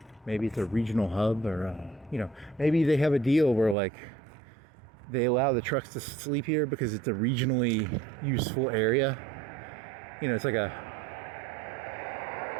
maybe it's a regional hub or, maybe they have a deal where, like, they allow the trucks to sleep here because it's a regionally useful area. It's like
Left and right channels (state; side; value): drops out; left; at 3.8 s